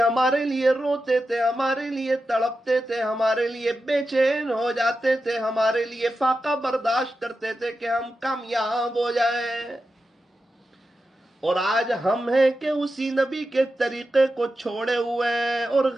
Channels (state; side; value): normal; both; correlation 0.90